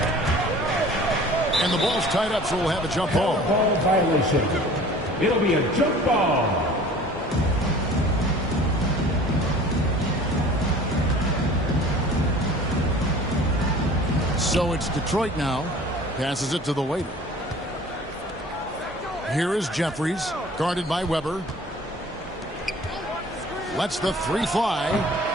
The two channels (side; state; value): both; normal; correlation 0.46